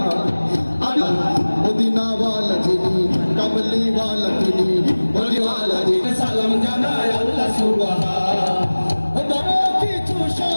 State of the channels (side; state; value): both; inverted; correlation -1.00